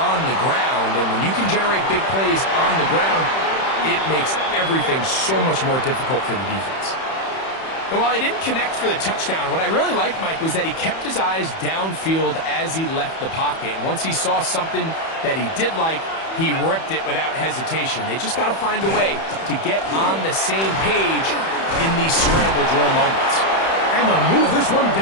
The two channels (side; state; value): right; late; 31 ms